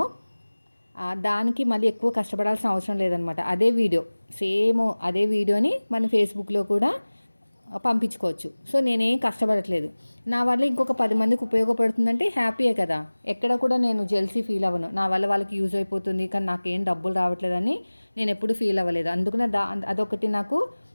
దానికి మళ్ళీ ఎక్కువ కష్టపడాల్సిన అవసరం లేదనమాట. అదే వీడియోని మన ఫేస్బుక్లో కూడా పంపించుకోవచ్చు. సో, నేనేం కష్టపడట్లేదు. నా వల్ల ఇంకొక 10 మందికి ఉపయోగపడుతుందంటే హ్యాపీయే కదా! ఎక్కడ కూడా నేను జెల్సీ ఫీల్ అవ్వను. నా వల్ల వాళ్ళకి యూజ్ అయిపోతుంది, కానీ నాకేం డబ్బులు రావట్లేదని నేను ఎప్పుడు ఫీల్ అవ్వలేదు. అందుకనే అదొకటి నాకు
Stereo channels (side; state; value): both; inverted; correlation -1.00